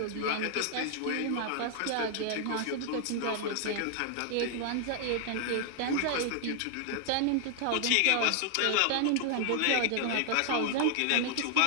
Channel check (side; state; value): both; different; correlation 0.00